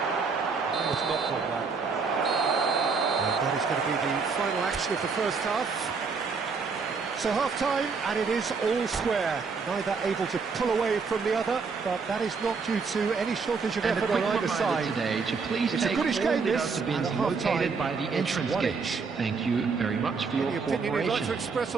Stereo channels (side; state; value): left; quieter; 5.0 dB